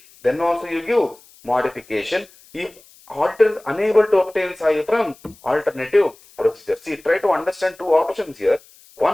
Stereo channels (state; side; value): noise; left; hiss, 26 dB below the sound